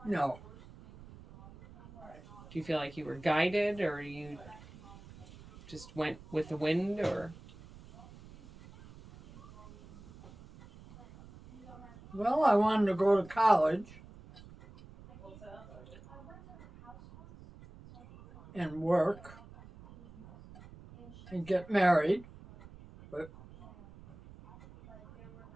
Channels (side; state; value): right; noise; rumble, 19 dB below the sound